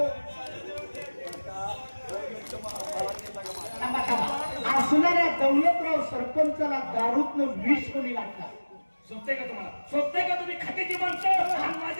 थांबा, थांबा. असणाऱ्या दौलतराव सरपंचाला दारूतनं विष कोणी लागला? सोबते का तुम्हाला? सोबते का तुम्ही खात्याची माणसं आणि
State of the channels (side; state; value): both; inverted; correlation -1.00